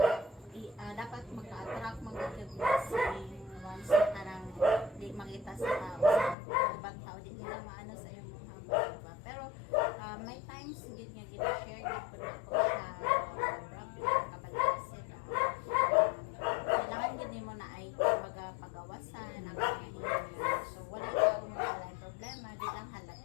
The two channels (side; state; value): right; drops out; at 6.4 s